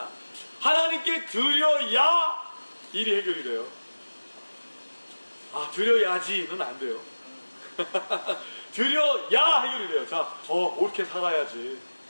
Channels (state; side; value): inverted; both; correlation -1.00